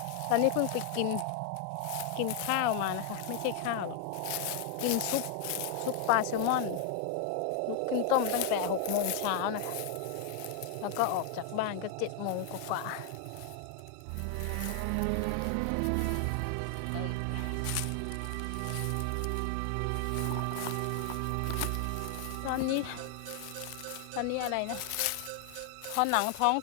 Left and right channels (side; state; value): both; different; correlation 0.00